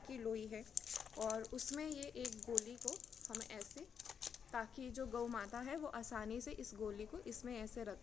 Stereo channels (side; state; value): right; quieter; 7.2 dB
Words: लोई है और उसमें ये एक गोली को हम ऐसे, ताकि जो गौ माता है वो आसानी से इस गोली को इसमें ऐसे रख